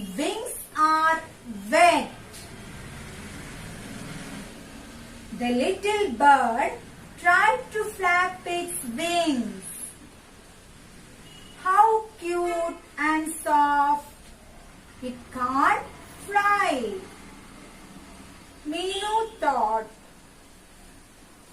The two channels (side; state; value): both; identical; correlation 1.00